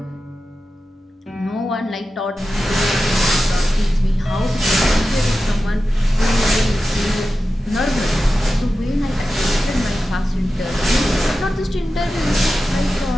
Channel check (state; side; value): normal; both; correlation 0.93